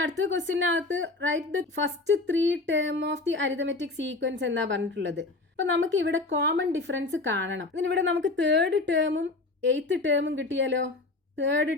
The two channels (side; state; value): right; quieter; 3.3 dB